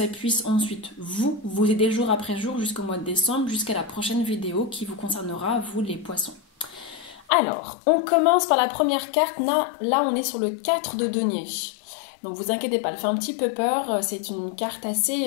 puisse ensuite vous aider jour après jour jusqu'au mois de décembre, jusqu'à la prochaine vidéo qui vous concernera, vous les poissons. Alors, on commence par la première carte. Là on est sur le 4 de denier. Donc vous inquiétez pas, elle fait un petit peu peur. C'est une carte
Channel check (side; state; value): right; drops out; at 7.2 s